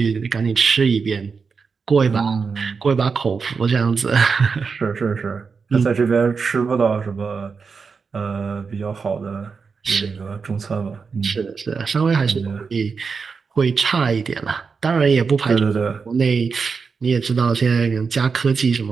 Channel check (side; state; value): left; quieter; 5.2 dB